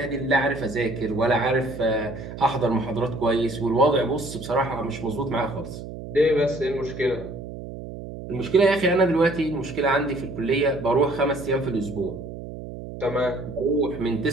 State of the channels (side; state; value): right; noise; hum, 11 dB below the sound